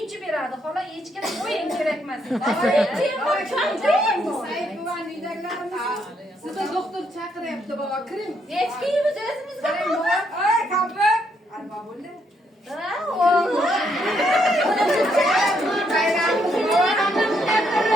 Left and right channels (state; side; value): normal; both; correlation 0.74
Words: beradi. Xola hech kim qo'ying kerak emas. Sayfuvan uydagilarimiz sizga doktor chaqiryapti baba, kiring. Hech kimimiz o'zimiz Qarang baba. Ay, kampir. Alba bo'ldi.